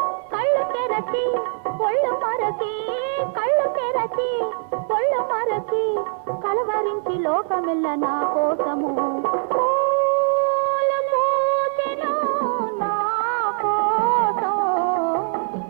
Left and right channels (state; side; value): silent; left; digital silence